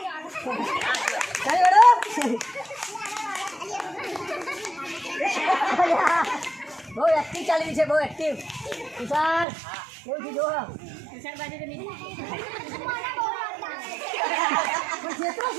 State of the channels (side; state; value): left; drops out; at 9.5 s